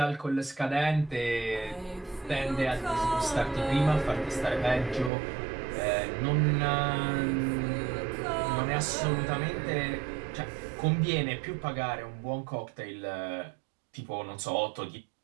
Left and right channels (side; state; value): left; drops out; at 5.1 s